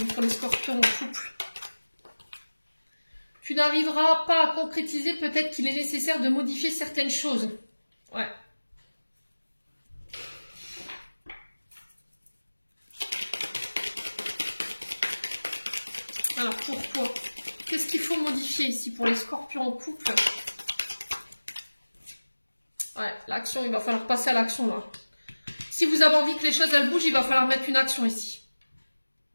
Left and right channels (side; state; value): both; inverted; correlation -1.00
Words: pour les scorpions en couple? Tu n'arriveras pas à concrétiser, peut-être qu'il est nécessaire de modifier certaines choses. Ouais. Alors, pourquoi? Qu'est-ce qu'il faut modifier ici pour les scorpions en couple? Ouais, l'action, il va falloir passer à l'action là. Si vous avez envie que les choses elles bougent, il va falloir mettre une action ici.